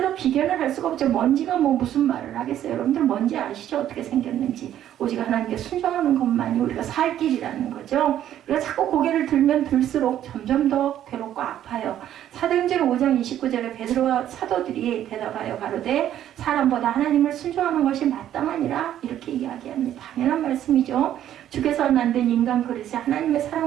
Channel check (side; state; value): left; quieter; 11.4 dB